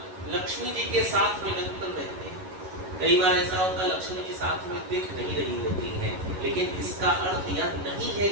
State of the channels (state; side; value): late; left; 11 ms